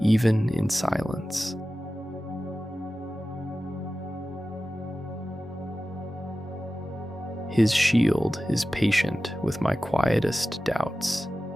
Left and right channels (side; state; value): both; normal; correlation 0.95